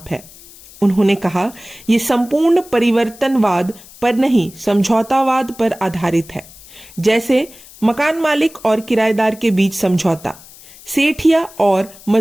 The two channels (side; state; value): left; noise; hiss, 21 dB below the sound